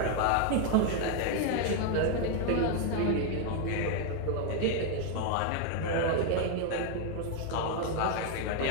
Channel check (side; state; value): both; different; correlation 0.01